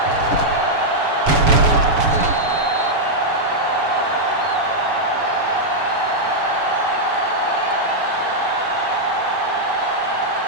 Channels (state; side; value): late; left; 7.0 ms